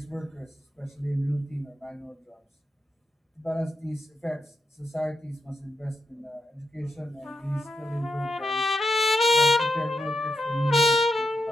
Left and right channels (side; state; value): both; normal; correlation 0.86